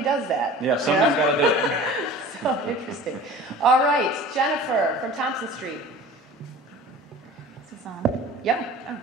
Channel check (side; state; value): both; normal; correlation 0.41